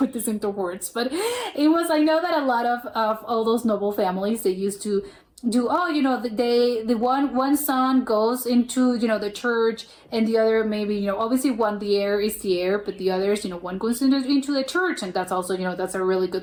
this into words, but it was, I know that a lot of all those noble families, they used to do, the one son goes into the church, and the other maybe obviously one, the heir is the heir, but the others, one goes into the church, and that's also that's a really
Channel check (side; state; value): both; identical; correlation 1.00